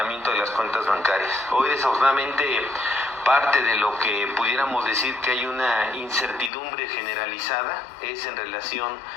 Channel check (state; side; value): drops out; right; at 6.5 s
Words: de las cuentas bancarias. Hoy desafortunadamente parte de lo que pudiéramos decir que hay una incertidumbre generalizada es en relación